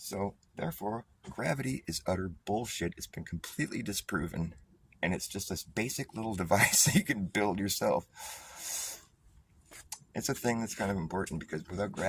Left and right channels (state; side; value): identical; both; correlation 1.00